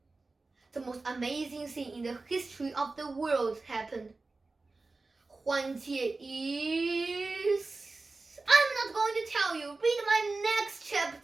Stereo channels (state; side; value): quieter; left; 3.6 dB